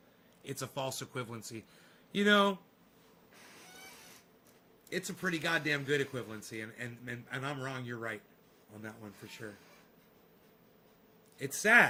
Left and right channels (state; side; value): identical; both; correlation 1.00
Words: equivalency. You know, it's a pretty goddamn good equivalency, and I'm wrong, you're right on that one for sure. It's